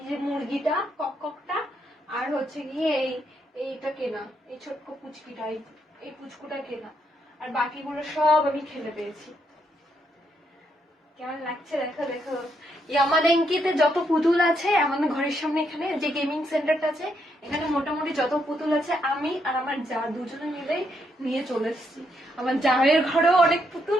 যে মুরগিটা ককটা, আর হচ্ছে গিয়ে এইটা কেনা, এই ছোট্ট পুচকিটা, এই পুচকুটা কেনা, আর বাকিগুলো সব আমি খেলে পেয়েছি। কেমন লাগছে দেখো দেখো। ইয়ামাদেঙ্কিতে যত পুতুল আছে আমাদের ঘরের সামনে, এখানে যে গেমিং সেন্টারটা আছে, এখানে মোটামুটি যত পুতুল আছে আমি আর আমার যা দুজনে মিলে নিয়ে চলে এসেছি। আমার জায়ের ঘরেও অনেক পুতুল,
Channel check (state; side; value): normal; both; correlation 0.77